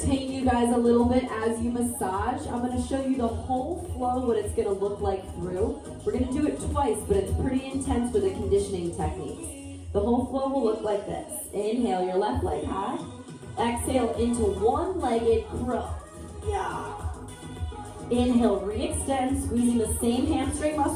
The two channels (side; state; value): both; identical; correlation 1.00